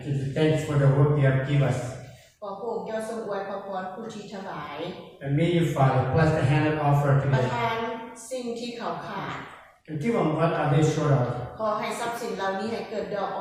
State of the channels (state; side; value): identical; both; correlation 1.00